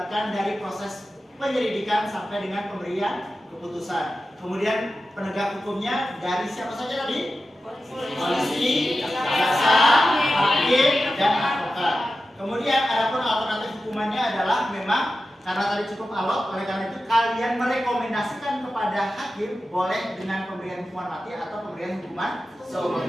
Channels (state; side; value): normal; both; correlation 0.93